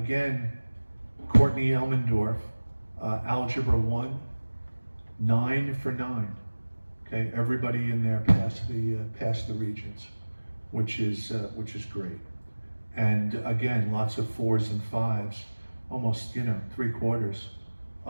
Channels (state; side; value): inverted; both; correlation -1.00